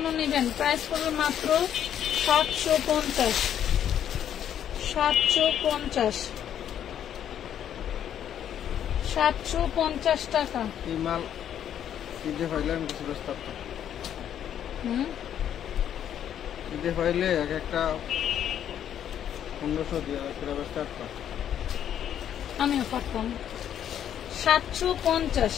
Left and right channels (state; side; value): quieter; right; 9.9 dB